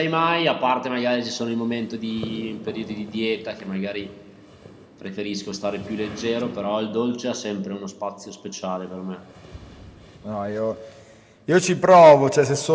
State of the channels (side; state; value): both; identical; correlation 1.00